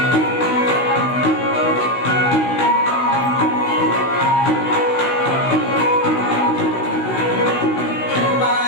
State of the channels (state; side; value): late; right; 16 ms